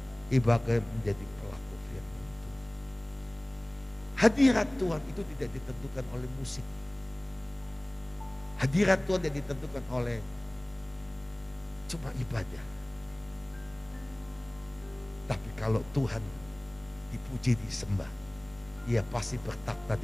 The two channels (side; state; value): right; noise; rumble, 27 dB below the sound